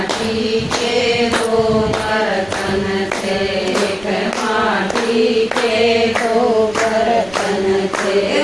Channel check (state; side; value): noise; right; rumble, 22 dB below the sound